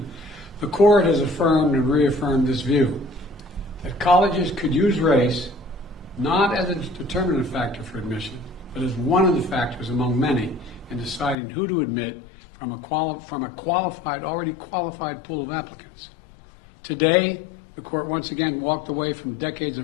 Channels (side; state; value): right; drops out; at 11.4 s